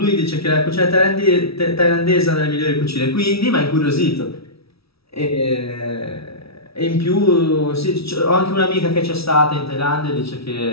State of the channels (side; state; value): right; late; 0.76 ms